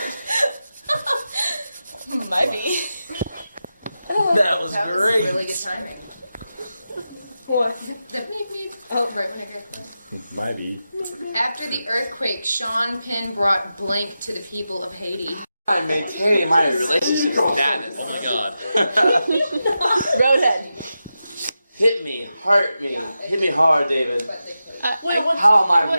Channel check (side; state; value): both; inverted; correlation -0.90